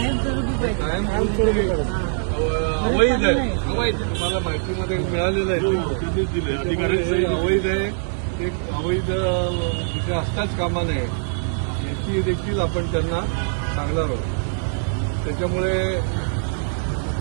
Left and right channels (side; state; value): left; silent; digital silence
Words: कायम अवैध आहे. अवैध तुम्हाला माहितीमध्ये मिळालेलं आहे. अवैध आहे. ते अवैध तिथे असताच कामा नये याची देखील आपण त्यांना सांगणार आहोत. त्याच्यामुळे